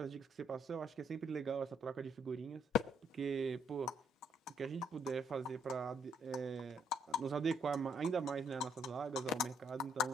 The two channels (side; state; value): both; normal; correlation 0.70